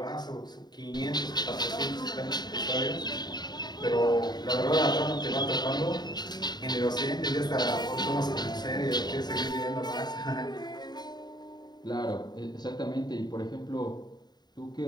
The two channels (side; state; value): right; late; 0.20 ms